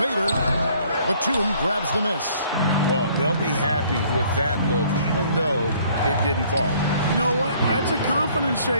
Batum grabs the miss. Well, they'll be happy with that look, even though it didn't fall. You know what? That's a confidence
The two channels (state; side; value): inverted; both; correlation -0.60